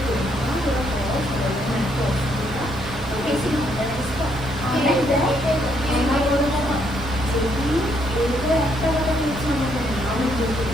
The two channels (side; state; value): both; normal; correlation 0.72